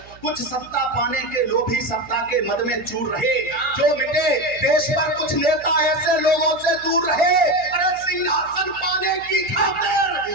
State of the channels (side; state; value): right; noise; hum, 24 dB below the sound